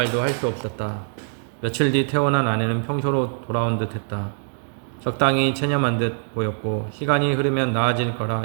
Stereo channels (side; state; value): left; silent; digital silence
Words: 할 수 없었다. 며칠 뒤 태어난 아내는 평소로 돌아온 듯 했다. 적당히 체념한 듯 보였고 시간이 흐르면 나아질